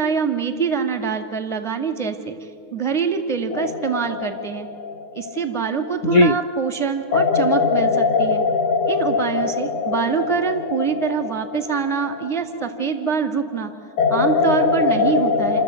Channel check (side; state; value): right; late; 9.8 ms